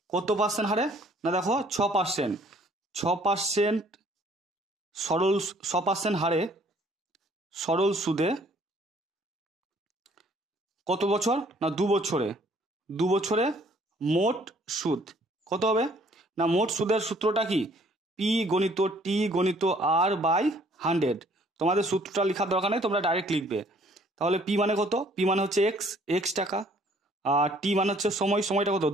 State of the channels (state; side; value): normal; both; correlation 0.59